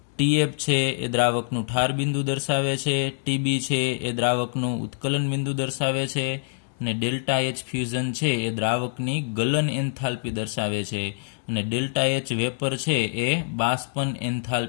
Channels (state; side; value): silent; right; digital silence